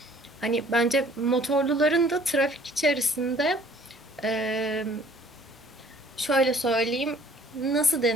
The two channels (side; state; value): both; normal; correlation 0.56